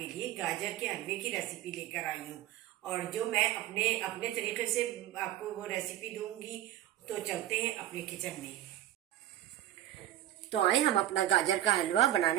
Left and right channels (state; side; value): quieter; left; 13.3 dB